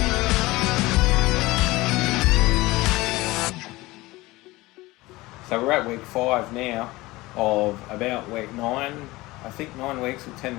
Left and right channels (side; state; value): right; quieter; 20.2 dB